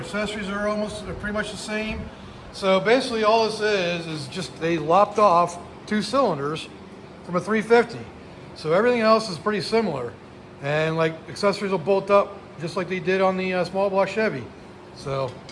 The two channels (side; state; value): both; identical; correlation 1.00